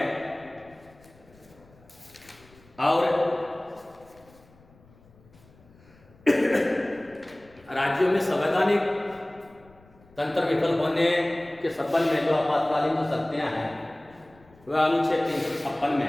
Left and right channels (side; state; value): left; noise; rumble, 27 dB below the sound